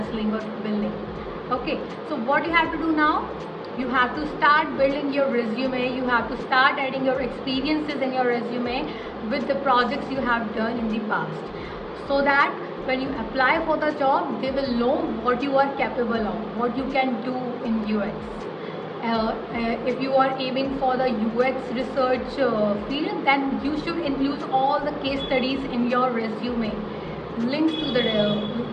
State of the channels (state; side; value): identical; both; correlation 1.00